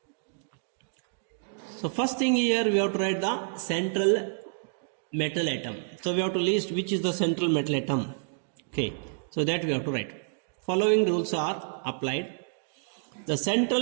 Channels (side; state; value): left; silent; digital silence